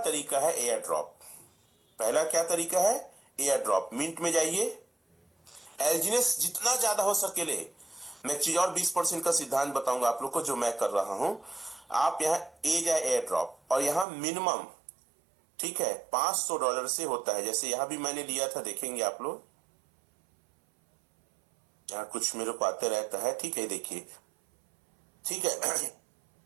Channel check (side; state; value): left; drops out; at 14.1 s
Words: है एयर ड्रॉप। पहला क्या तरीका है, एयर ड्रॉप। मिंट में जाइए, एल्जिनेस जितना ज्यादा हो सके ले। मैं एक चीज और 20% का सिद्धांत बताऊंगा आप लोग को जो मैं कर रहा हूं। आप यहां ए जाए एयर ड्रॉप, और यहां मिनिमम, ठीक है, $500 से होता है। जैसे यहां भी मैंने लिया था, देखेंगे आप लोग, यहाँ कुछ मेरे को आते रहता है, ठीक है, देखिए, ठीक है।